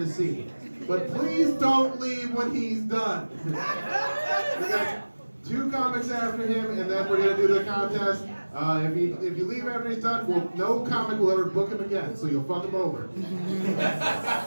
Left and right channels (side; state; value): both; inverted; correlation -1.00